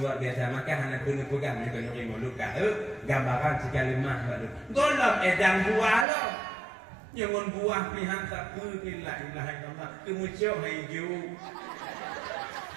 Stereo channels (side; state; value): left; drops out; at 6.1 s